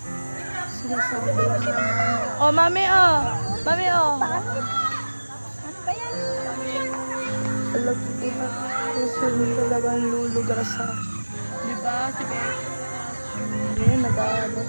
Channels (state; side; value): inverted; both; correlation -1.00